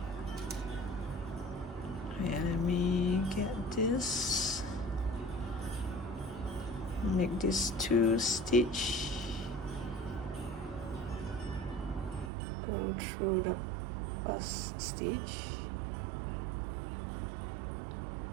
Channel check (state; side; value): drops out; left; at 12.3 s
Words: And let me get this, make this 2 stitch, go through the first stitch,